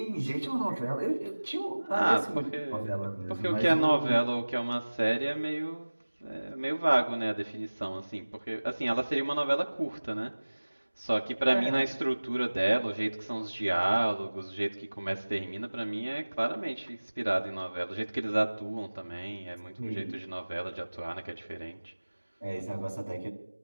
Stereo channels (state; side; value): inverted; both; correlation -1.00